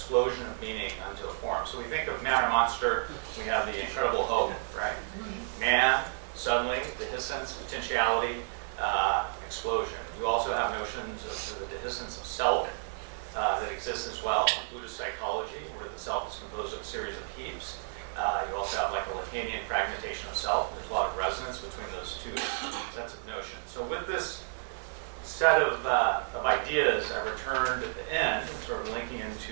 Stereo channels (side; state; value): left; silent; 57 dB below the other